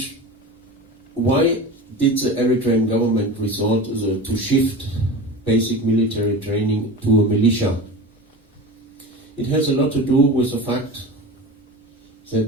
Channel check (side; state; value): both; normal; correlation 0.31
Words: Why did the Eritrean government resort to shift basic military training to a militia? It has a lot to do with the fact